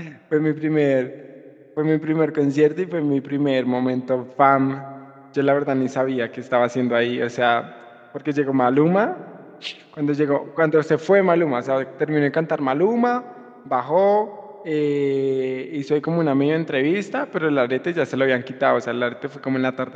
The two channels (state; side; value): identical; both; correlation 1.00